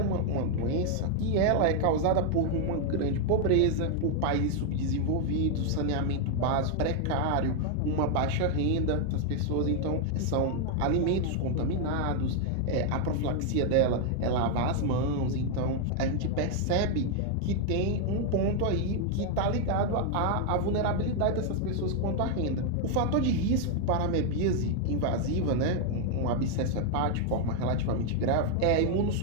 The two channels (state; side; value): different; both; correlation 0.00